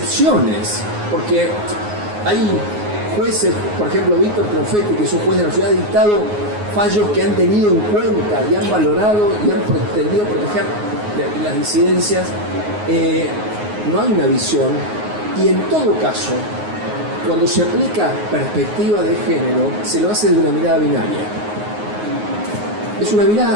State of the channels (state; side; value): late; left; 9.5 ms